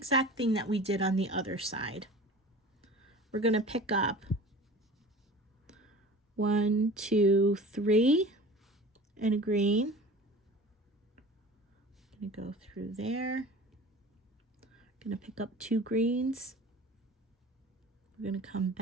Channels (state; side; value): normal; both; correlation 0.40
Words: thing that we did on the other side. We're going to pick up 1, 2, 3 in a green. I'm going to go through there. I'm going to pick up 2 greens. We're going to come